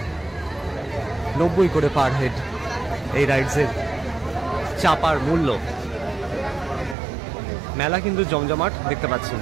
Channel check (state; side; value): drops out; left; at 7.0 s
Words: 90 করে পার হেড। এই রাইডসের চাপার মূল্য। মেলা কিন্তু জমজমাট দেখতে পাচ্ছেন।